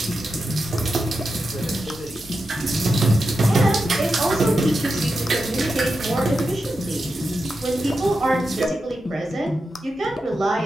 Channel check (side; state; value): both; normal; correlation 0.89